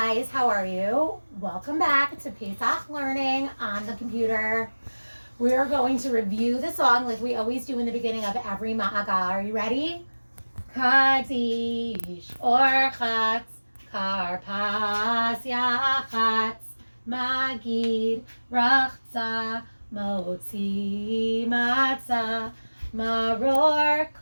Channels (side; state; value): both; inverted; correlation -1.00